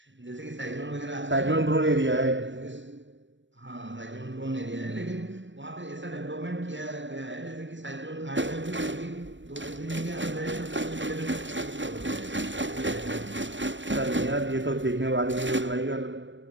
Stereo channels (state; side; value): late; left; 0.54 ms